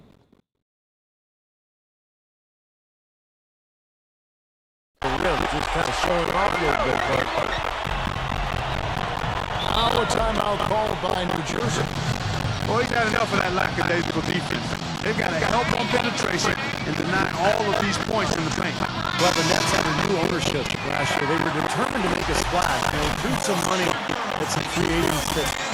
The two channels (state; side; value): identical; both; correlation 1.00